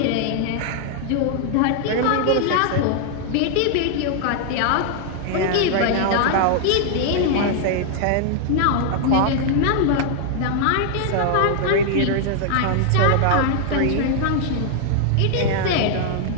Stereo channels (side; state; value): both; different; correlation -0.01